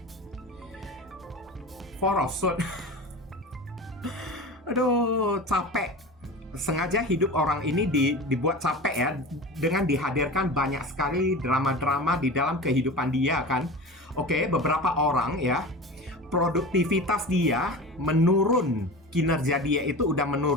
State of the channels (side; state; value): both; normal; correlation 0.32